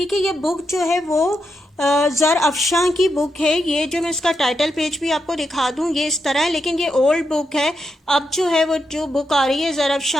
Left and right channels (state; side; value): normal; both; correlation 0.84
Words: है। ये बुक जो है वो ज़र अफशां की बुक है। ये जो मैं इसका टाइटल पेज भी आपको दिखा दूं, ये इस तरह है, लेकिन ये ओल्ड बुक है। अब जो है वो जो बुक आ रही है ज़र